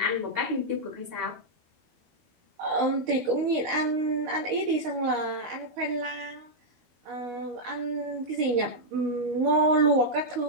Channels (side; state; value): left; late; 12 ms